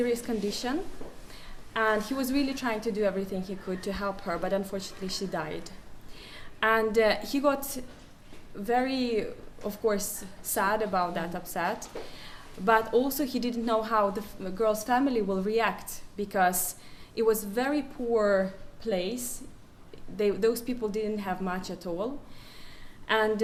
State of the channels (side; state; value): both; identical; correlation 1.00